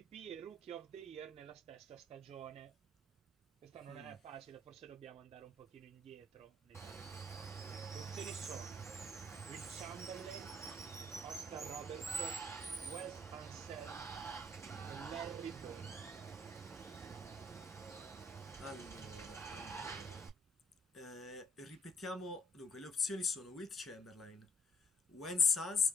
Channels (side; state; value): both; normal; correlation 0.67